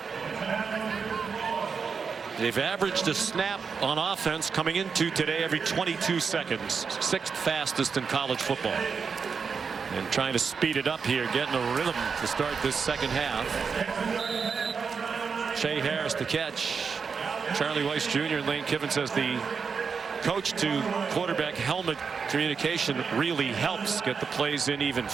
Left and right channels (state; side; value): quieter; left; 5.7 dB